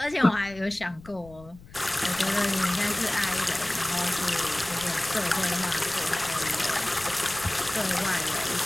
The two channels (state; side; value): noise; left; rumble, 21 dB below the sound